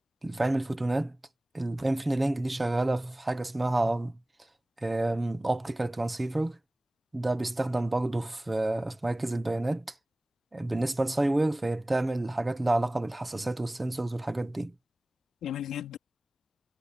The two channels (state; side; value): normal; both; correlation 0.98